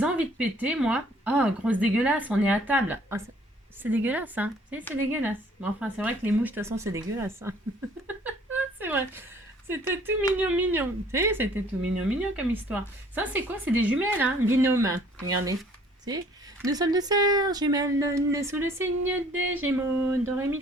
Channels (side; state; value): both; normal; correlation 0.57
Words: envies de péter, moi. Oh, grosse dégueulasse, on est à table. Ah, c'est dégueulasse, hein. Si, c'est dégueulasse. Mais enfin, c'est vrai que les mouches, de toute façon, c'est dégueulasse. Hein. C'est vrai. C'était tout mignon, mignon. Tu sais, c'était tout mignon, mignon comme histoire. Ça, c'est quoi? C'est des jumelles, hein? Binôme. Regardez. Tu sais, nous sommes deux sœurs jumelles nées sous le signe des Gémeaux. Do, ré, mi,